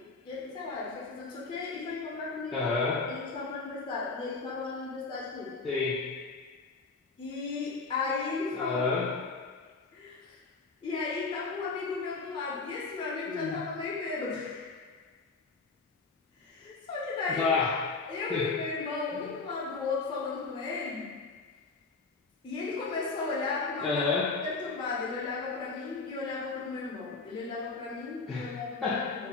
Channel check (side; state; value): right; quieter; 4.0 dB